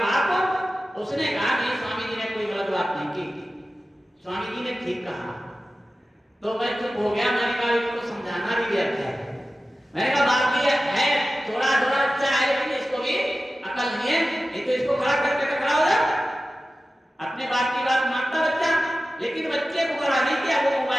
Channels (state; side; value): normal; both; correlation 0.95